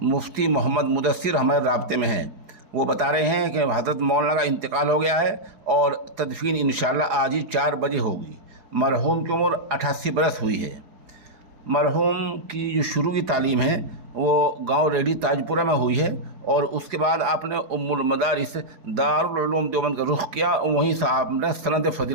مفتی محمد مدثر ہمارے رابطے میں ہیں۔ وہ بتا رہے ہیں کہ حضرت مولانا کا انتقال ہو گیا ہے اور تدفین انشاءاللہ آج ہی 4 بجے ہوگی۔ مرحوم کی عمر 88 برس ہوئی ہے۔ مرحوم کی جو شروع کی تعلیم ہے وہ گاؤں ریڈی تاجپورہ میں ہوئی ہے، اور اس کے بعد آپ نے ام المدارس دارالعلوم دیوبند کا رخ کیا، اور وہیں سے آپ نے سند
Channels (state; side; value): late; left; 4.8 ms